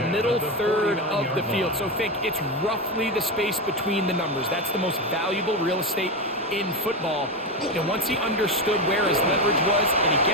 middle third of the field. So think it's roughly the space between the numbers. That's the most valuable real estate in football. And once he understood where his leverage was and he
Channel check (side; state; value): both; normal; correlation 0.14